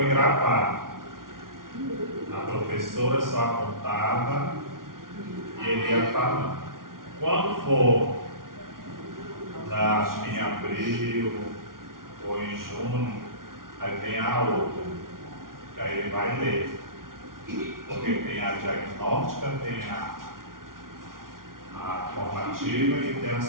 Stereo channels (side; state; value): left; late; 0.92 ms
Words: gravado. A professora só apontava e ele ia falando. Quando for, acho que em abril ou em junho, aí vem a outra, que aí ele vai ler. Porque tem a diagnóstica, tem sumativa e tem a